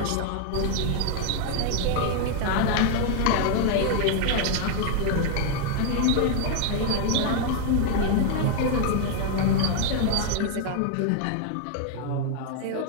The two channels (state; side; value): different; both; correlation 0.00